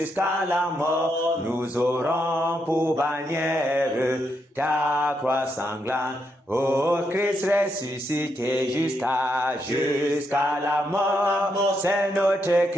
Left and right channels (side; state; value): both; normal; correlation 0.80